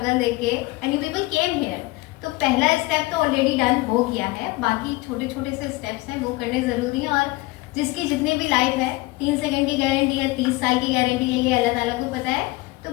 देख के, and you people came here. तो पहला स्टेप तो ऑलरेडी डन हो गया है, बाकी छोटे छोटे से स्टेप्स हैं वो करने ज़रूरी हैं। और जिसकी जितनी भी लाइफ है, 3 सेकंड की गारंटी है, 30 साल की गारंटी है, ये अल्लाह ताला को पता है। तो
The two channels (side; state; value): right; quieter; 21.4 dB